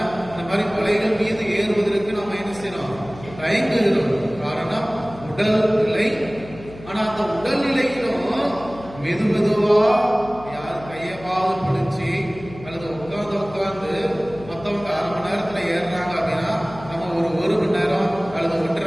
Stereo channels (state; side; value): noise; left; hum, 17 dB below the sound